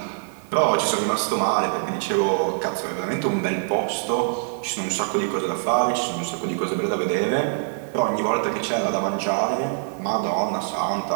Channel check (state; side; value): silent; left; digital silence